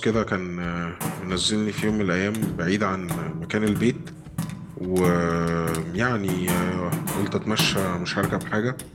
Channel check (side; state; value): both; identical; correlation 1.00